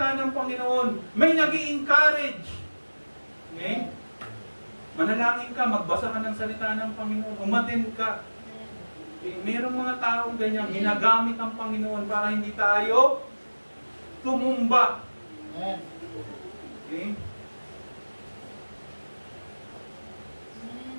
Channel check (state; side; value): inverted; both; correlation -1.00